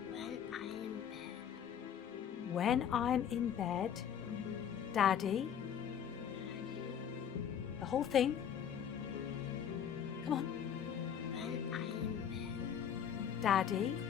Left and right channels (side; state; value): right; quieter; 8.6 dB